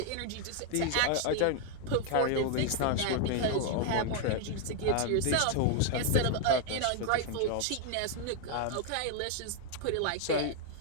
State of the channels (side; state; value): both; different; correlation 0.00